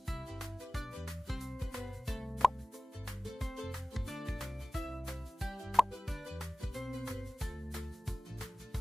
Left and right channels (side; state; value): both; normal; correlation 0.97